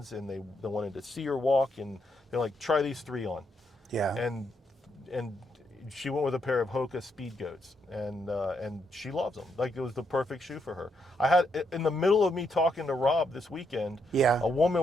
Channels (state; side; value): normal; both; correlation 0.78